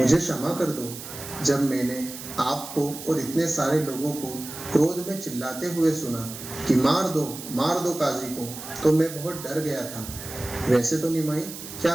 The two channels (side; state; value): right; noise; hiss, 11 dB below the sound